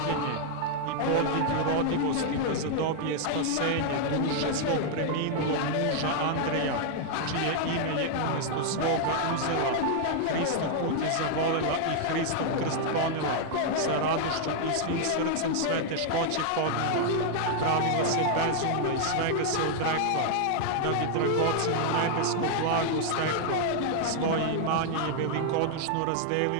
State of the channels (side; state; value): both; different; correlation 0.00